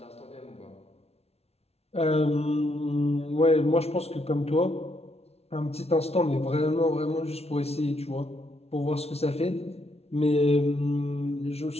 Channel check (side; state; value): right; late; 0.30 ms